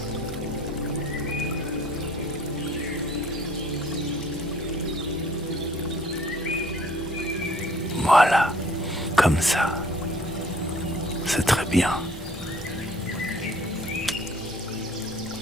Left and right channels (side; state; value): both; normal; correlation 0.55